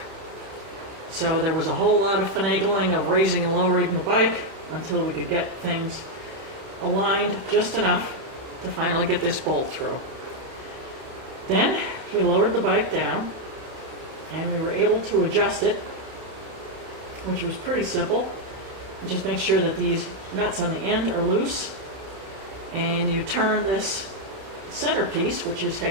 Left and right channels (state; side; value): late; left; 31 ms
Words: So there was a whole lot of finagling of raising and lowering the bike until we could get things aligned just enough to finally get this bolt through. Then we lowered the bike down and we were able to adjust it, which was pretty simple. You just make sure that these nuts on the end are loose, and you turn this centerpiece, which is